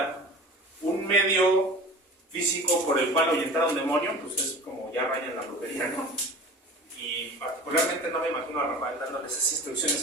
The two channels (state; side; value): normal; both; correlation 0.38